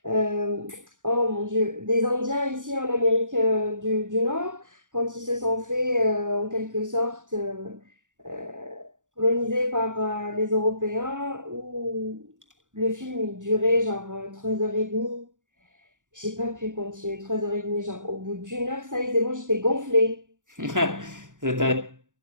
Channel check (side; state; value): left; late; 0.87 ms